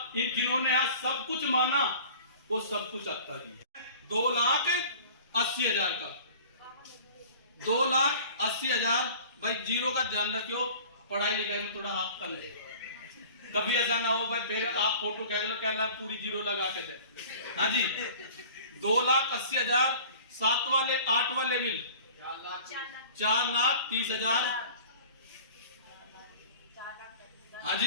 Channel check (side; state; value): both; inverted; correlation -0.45